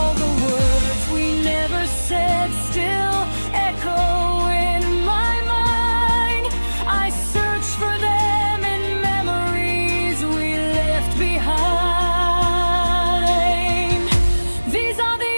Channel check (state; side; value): inverted; both; correlation -1.00